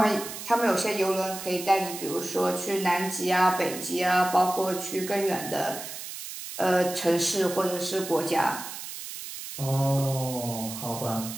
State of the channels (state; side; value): noise; right; hiss, 9 dB below the sound